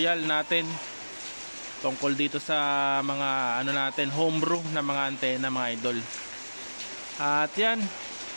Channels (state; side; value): inverted; both; correlation -1.00